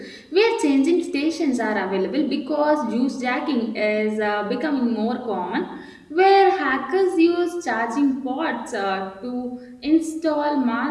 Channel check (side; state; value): both; identical; correlation 1.00